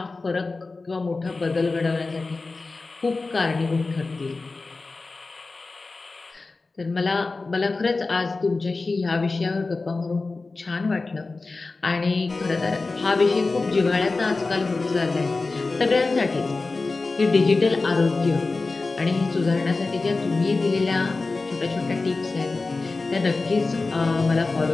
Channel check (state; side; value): quieter; right; 3.7 dB